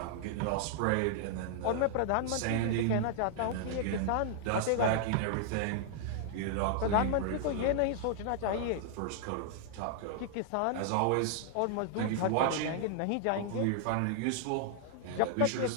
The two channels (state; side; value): different; both; correlation -0.01